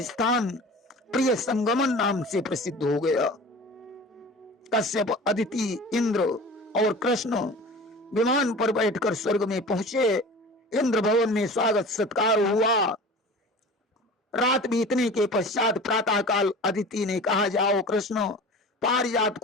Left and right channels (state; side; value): normal; both; correlation 0.39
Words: स्थान प्रिय संगमन नाम से प्रसिद्ध हो गया। कश्यप, अदिति, इंद्र और कृष्ण विमान पर बैठकर स्वर्ग में पहुंचे। इंद्र भवन में स्वागत सत्कार हुआ। रात बीतने के पश्चात प्रातः काल अदिति ने कहा, जाओ कृष्ण पारिजात